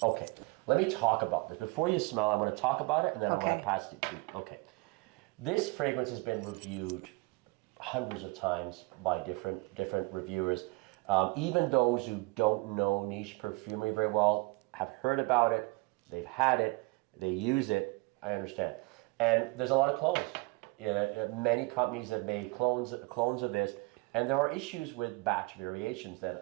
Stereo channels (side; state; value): left; quieter; 26.2 dB